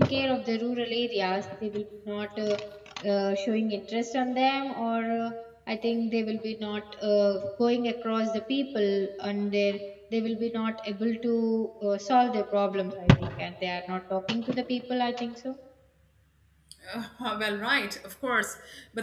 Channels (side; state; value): both; identical; correlation 1.00